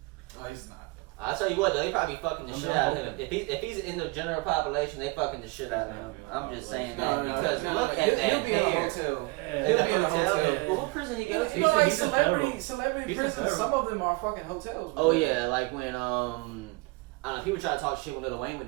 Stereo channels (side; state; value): left; quieter; 25.4 dB